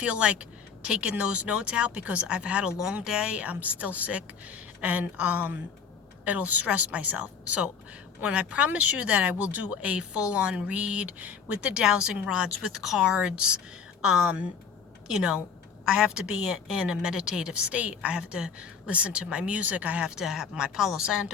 like taking those notes out because I've had a long day. I'm still sick, and it'll stress myself. So when I promise you that I will do a full-on read with the dowsing rods, with cards, I have to be in a meditative state. I have to listen to my music. I have to have my Palo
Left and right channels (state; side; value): quieter; right; 6.5 dB